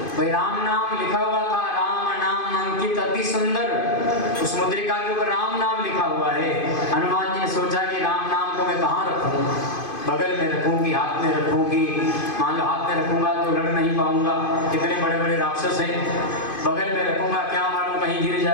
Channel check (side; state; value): right; late; 2.5 ms